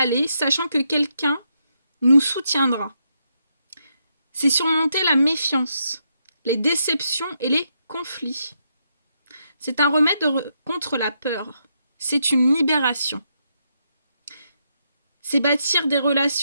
sachant que quelqu'un nous soutiendra. C'est surmonter la méfiance, les déceptions et les conflits. C'est un remède contre la peur. C'est une libération. C'est bâtir des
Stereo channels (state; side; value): inverted; both; correlation -0.79